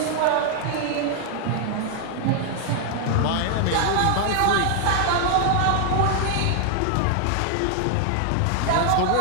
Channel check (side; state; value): both; different; correlation 0.00